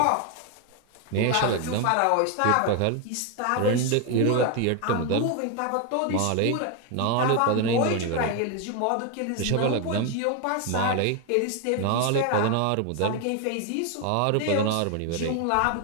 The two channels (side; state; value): both; different; correlation 0.01